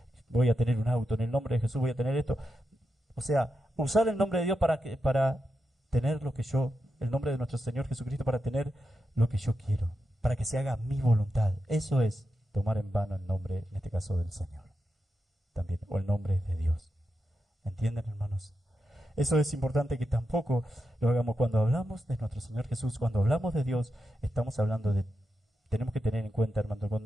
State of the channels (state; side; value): normal; both; correlation 0.88